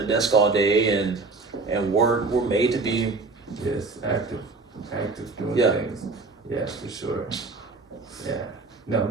a desk all day and work. We're made to be active doing things. Yeah, for sure. Yeah. No,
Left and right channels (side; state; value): left; quieter; 3.8 dB